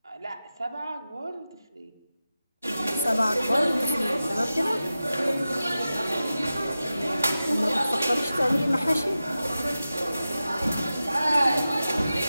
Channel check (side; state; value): both; inverted; correlation -0.94